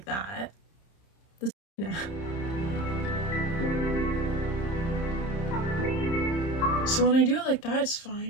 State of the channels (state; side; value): late; right; 30 ms